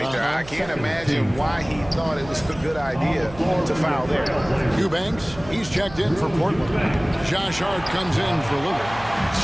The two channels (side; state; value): right; noise; hum, 17 dB below the sound